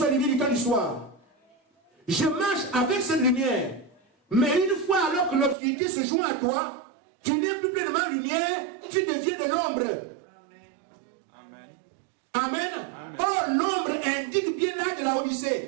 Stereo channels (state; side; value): drops out; left; at 5.6 s